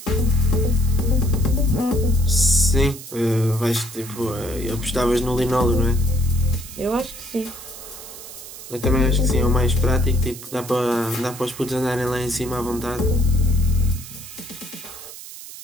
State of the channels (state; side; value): noise; right; hiss, 14 dB below the sound